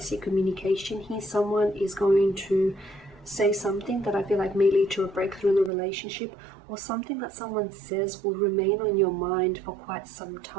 communication here. Someone is going to say something that I feel like may lead to a breakthrough in the relationship, or something that someone says will remain on your mind for quite some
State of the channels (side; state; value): left; drops out; at 5.7 s